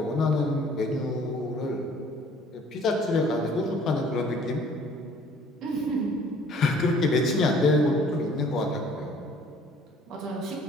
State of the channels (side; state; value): both; normal; correlation 0.55